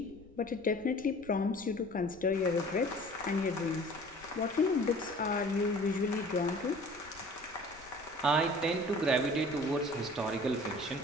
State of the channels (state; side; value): noise; left; rumble, 23 dB below the sound